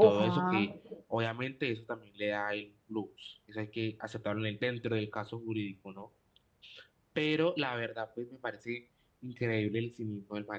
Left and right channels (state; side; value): identical; both; correlation 1.00